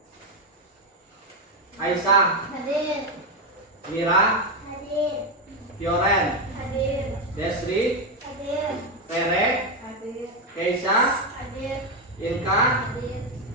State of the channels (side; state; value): both; normal; correlation 0.08